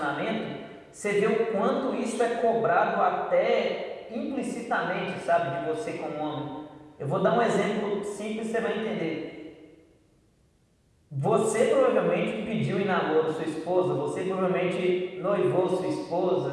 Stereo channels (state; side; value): identical; both; correlation 1.00